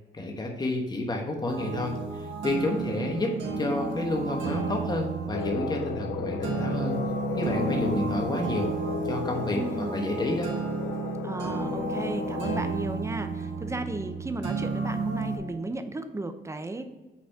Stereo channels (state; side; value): normal; both; correlation 0.57